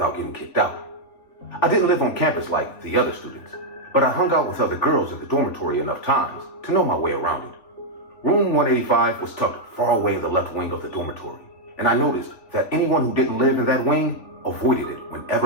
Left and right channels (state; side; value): late; right; 3.9 ms